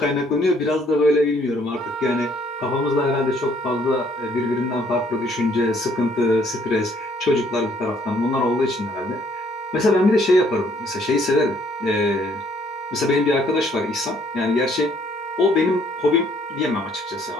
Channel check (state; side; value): normal; both; correlation 0.64